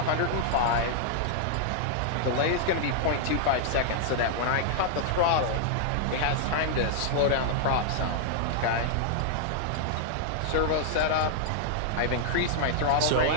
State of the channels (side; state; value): both; different; correlation -0.01